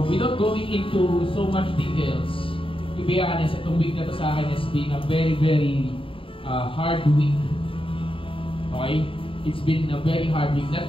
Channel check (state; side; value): late; right; 0.26 ms